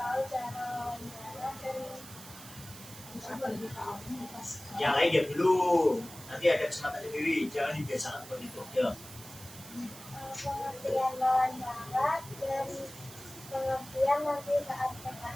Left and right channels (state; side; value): noise; right; hiss, 15 dB below the sound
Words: Yang lain ya belum. Nanti ada kesempatan sendiri. Jangan dibiasakan seperti itu. Ya. Pengertian wawancara dan pengertian nanti saat